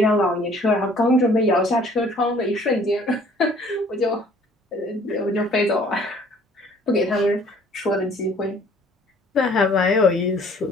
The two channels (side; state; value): both; normal; correlation 0.55